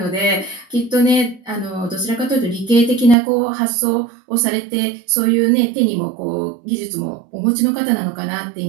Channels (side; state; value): left; drops out; at 3.2 s